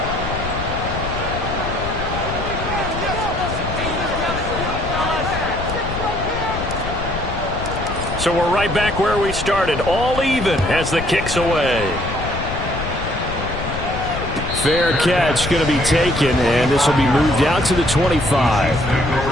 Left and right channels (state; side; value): noise; left; rumble, 7 dB below the sound